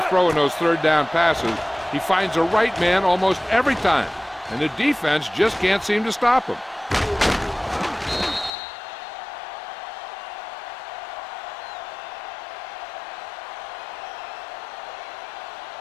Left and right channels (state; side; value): drops out; right; at 8.5 s